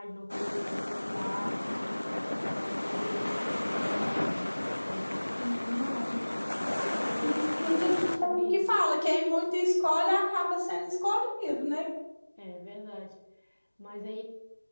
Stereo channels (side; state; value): both; inverted; correlation -1.00